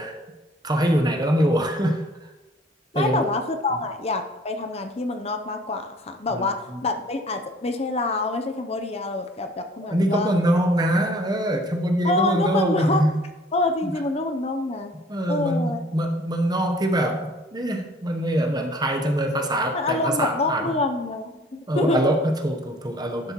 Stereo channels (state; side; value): normal; both; correlation 0.53